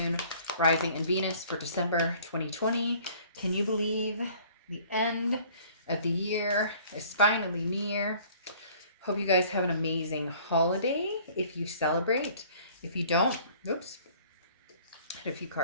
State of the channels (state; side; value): inverted; both; correlation -0.53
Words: Rising, and Venus for December 2020. Can you believe the end of the year is finally near? Hope you guys have an amazing holiday if you celebrate. If you don't, oops, had a few